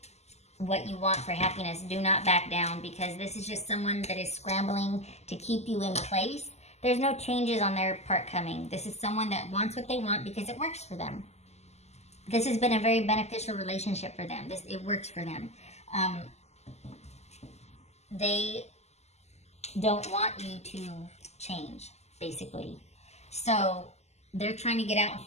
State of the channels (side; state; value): right; late; 0.32 ms